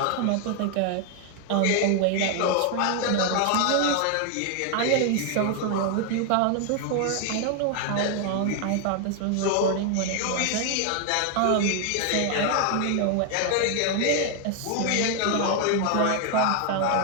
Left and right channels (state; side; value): different; both; correlation 0.00